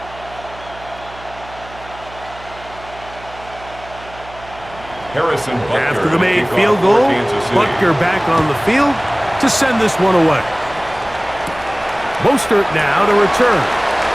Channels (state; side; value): noise; right; hum, 19 dB below the sound